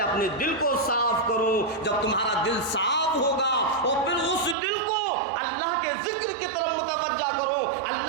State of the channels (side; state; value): left; drops out; at 4.5 s